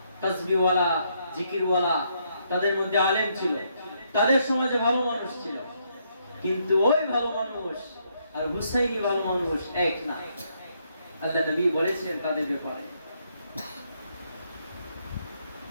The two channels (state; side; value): inverted; both; correlation -0.74